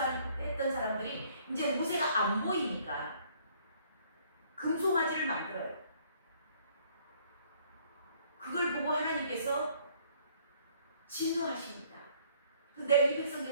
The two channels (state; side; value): inverted; both; correlation -0.61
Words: 사람들이 이제 모세가 안 보이니까 금송아지를 만들어요. 그걸 보고 하나님께서 진노하십니다. 내가 이